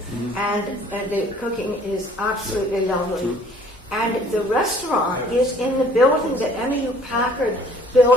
and the cooking is absolutely lovely. And the restaurant is in the building that Emmylou Packard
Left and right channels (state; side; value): normal; both; correlation 0.56